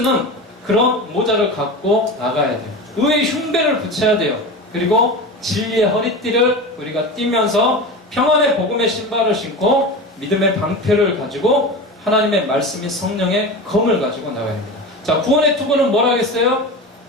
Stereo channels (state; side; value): normal; both; correlation 0.28